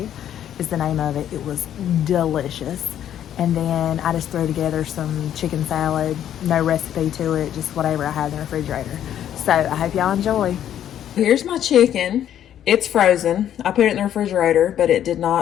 is the name of it. It was delicious. And then I just threw together some chicken salad, no recipe to it, just whatever I had in the refrigerator. So I hope y'all enjoy. Here's my chicken. It's frozen. I put it in the refrigerator, but it did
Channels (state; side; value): quieter; right; 10.5 dB